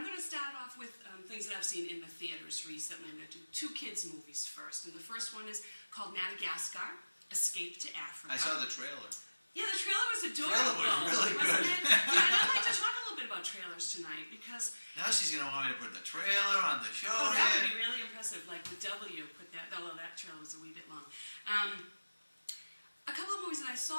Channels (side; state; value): both; inverted; correlation -1.00